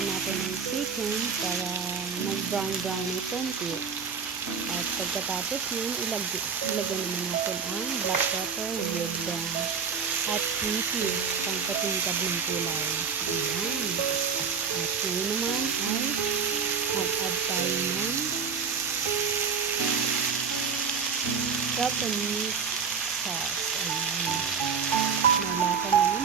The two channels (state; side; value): quieter; left; 6.2 dB